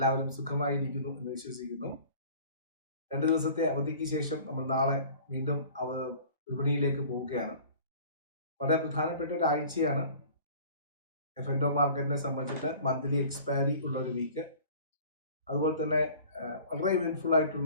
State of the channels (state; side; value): inverted; both; correlation -0.46